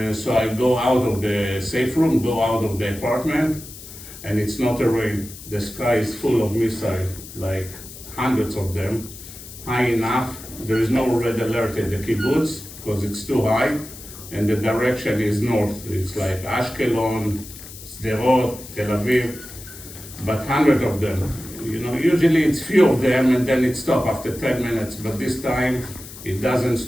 So I go out of the safe room, go out of the apartment, and it's not a rain. The sky is full of missiles, like hundreds of them, high enough. There is no red alert at the kibbutz because it's too high. And the direction is north. It's like Ashkelon, Sderot, Tel Aviv, but hundreds of them. You know, usually it's few of them and then it stops after 10 minutes, but this time it doesn't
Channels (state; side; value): noise; left; hiss, 15 dB below the sound